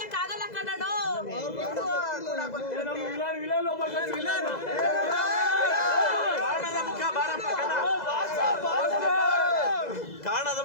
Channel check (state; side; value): late; right; 2.0 ms